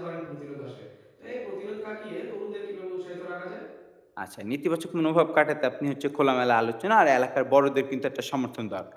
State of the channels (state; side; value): identical; both; correlation 1.00